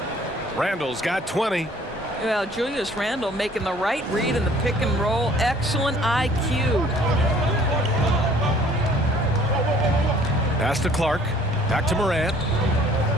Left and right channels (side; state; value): both; normal; correlation 0.55